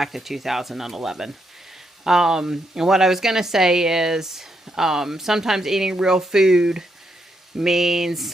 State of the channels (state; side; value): normal; both; correlation 0.79